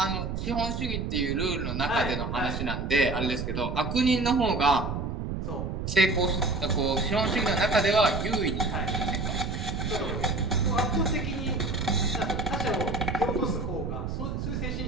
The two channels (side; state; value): right; noise; rumble, 3 dB below the sound